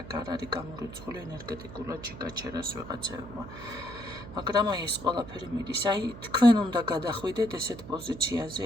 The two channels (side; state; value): right; noise; hum, 13 dB below the sound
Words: არ არის გამორიცხული ენერგეტიკულად შეგაჩერას ვიღაცებმა. მაგრამ აი ეს ყველაფერი მიდის, აი თქვენ უნდა გადახვიდეთ ესეთ პოზიციაზე,